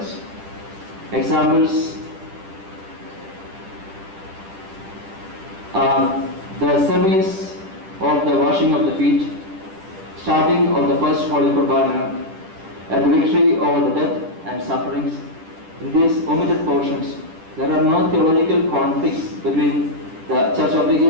Examples are the service of the washing of the feet, starting of the first Holy Qurbana, and the victory over the death and sufferings. In these omitted portions, there are no theological conflicts between the Church of the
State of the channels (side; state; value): left; late; 10 ms